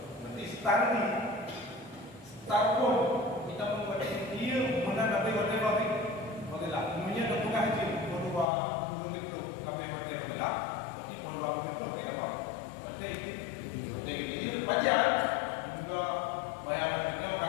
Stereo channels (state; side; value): drops out; right; at 8.5 s